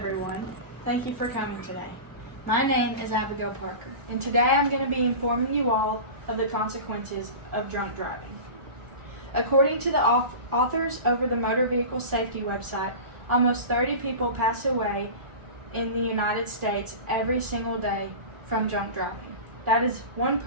thank you for coming today. My name is Abigail Parker, and today I'm going to be informing you all of the consequences of drunk driving. According to the authors over the Motor Vehicle Safety website, almost 30 people pass away in the United States every single day from drunk driving. That is one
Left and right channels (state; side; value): late; left; 1.3 ms